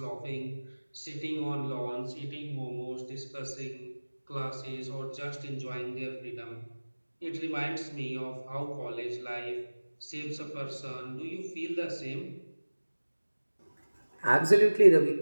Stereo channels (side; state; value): both; inverted; correlation -1.00